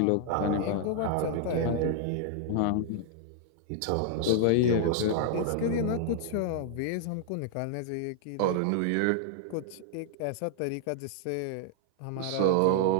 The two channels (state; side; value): different; both; correlation 0.00